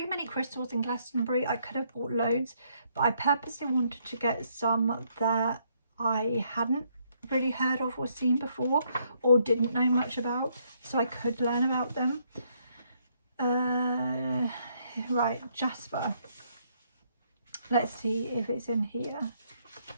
many crystals in Glastonbury. I could have bought loads, but I purposely wanted to get some that I hadn't really heard of or seen before or didn't know much about, so I could learn about them. Right, Jasper. Let's see if it's in here.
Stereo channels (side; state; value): both; inverted; correlation -0.71